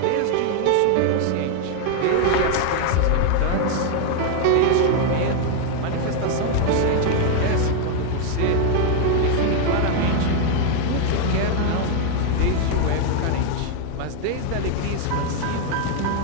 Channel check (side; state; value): both; different; correlation 0.00